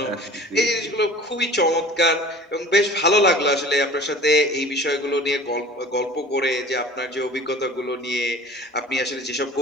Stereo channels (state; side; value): normal; both; correlation 0.43